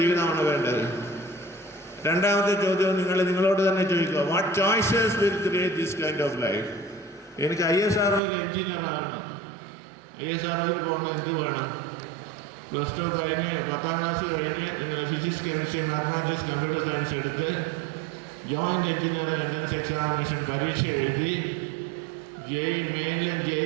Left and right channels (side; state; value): left; drops out; at 8.2 s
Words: ജീവിതമാണ് വേണ്ടത്? രണ്ടാമത്തെ ചോദ്യം നിങ്ങളോട് തന്നെ ചോദിക്കുക, what choices will create this kind of life? എനിക്ക് ISROയിൽ എഞ്ചിനീയർ ആകണം. ISROയിൽ പോകണം, എന്ത് വേണം? +2 കഴിഞ്ഞ് 10ാം ക്ലാസ് കഴിഞ്ഞ് നിങ്ങൾ physics, chemistry, mathematics, computer science എടുത്ത് ജോയിൻ്റ് എഞ്ചിനീയറിംഗ് എൻട്രൻസ് എക്സാമിനേഷൻ പരീക്ഷ എഴുതി JEE മെയിനിലും